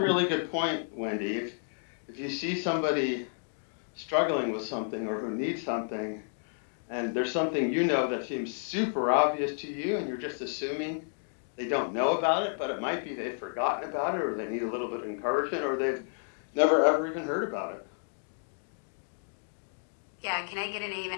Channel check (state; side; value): silent; right; digital silence